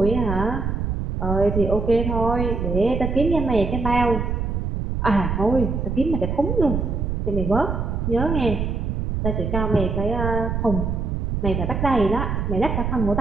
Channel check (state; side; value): noise; right; rumble, 1 dB below the sound